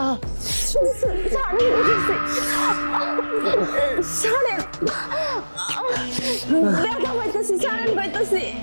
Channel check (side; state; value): both; inverted; correlation -1.00